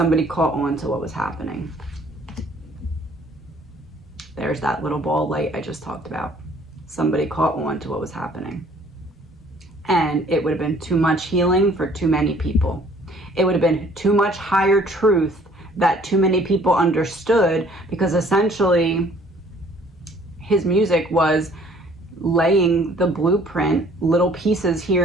caught on to what was happening. There's that little ball of light I just talked about. Somebody caught on to what was happening. And it would have been too much healing for too many people. It would have been too much higher truth that too many people understood, because essentially his music was laying the blueprint, little pieces here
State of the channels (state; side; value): normal; both; correlation 0.57